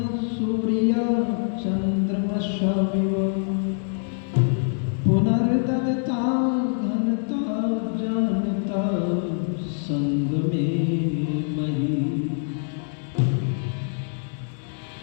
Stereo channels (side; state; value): right; silent; digital silence